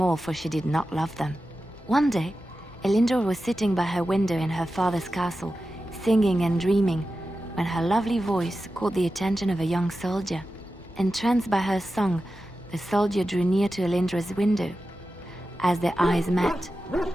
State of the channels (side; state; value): both; normal; correlation 0.92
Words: all, for she did not love them. One day, Elindra was sitting by her window in her father's castle, singing and dreaming, when her lovely voice caught the attention of a young soldier. Entranced by her song, the soldier drew near to Elindra's window. As their eyes met,